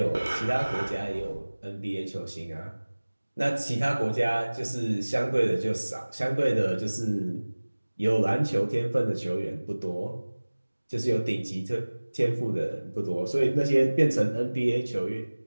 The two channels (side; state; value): both; inverted; correlation -1.00